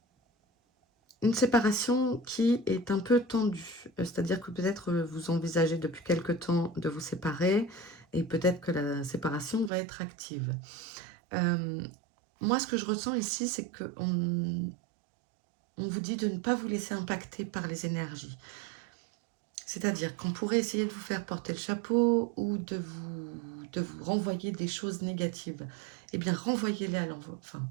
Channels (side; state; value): left; drops out; at 9.7 s